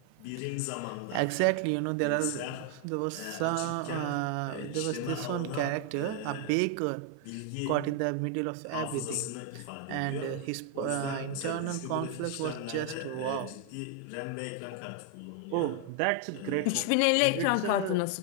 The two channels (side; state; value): both; different; correlation 0.00